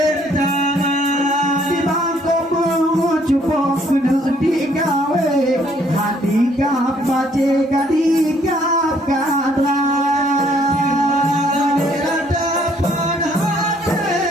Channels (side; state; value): both; normal; correlation 0.64